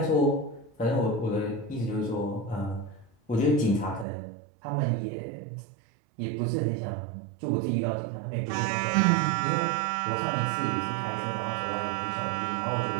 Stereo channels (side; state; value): left; drops out; at 4.0 s